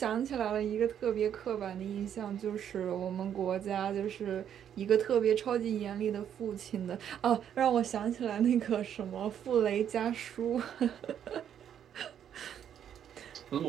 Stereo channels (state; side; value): quieter; left; 9.3 dB